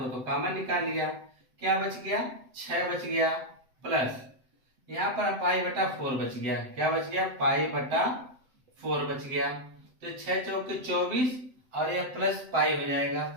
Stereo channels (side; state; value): left; late; 7.8 ms